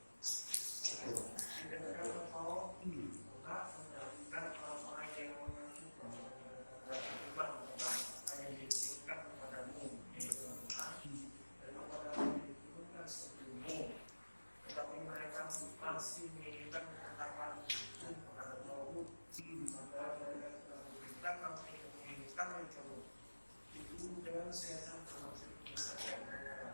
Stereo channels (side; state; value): both; inverted; correlation -1.00